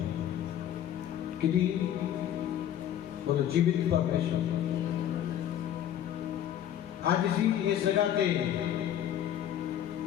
किहदी? बोलो जीवित परमेश्वर। आज असी इस जगह पे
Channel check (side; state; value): right; quieter; 10.7 dB